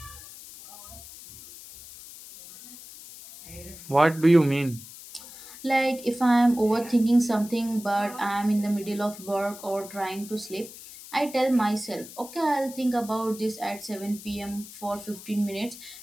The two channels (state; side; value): noise; left; hiss, 16 dB below the sound